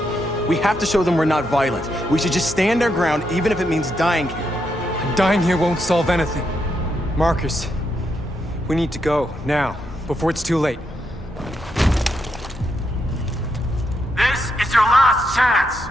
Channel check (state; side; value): normal; both; correlation 0.81